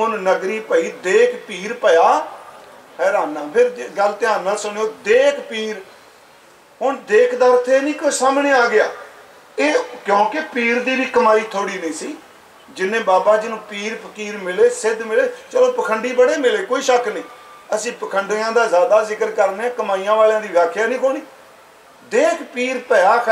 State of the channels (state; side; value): identical; both; correlation 1.00